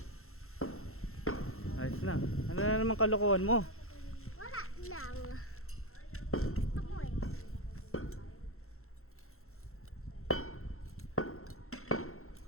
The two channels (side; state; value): right; late; 0.62 ms